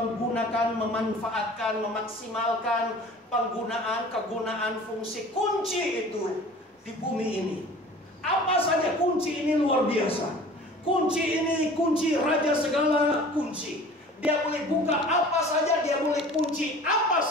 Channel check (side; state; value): both; normal; correlation 0.44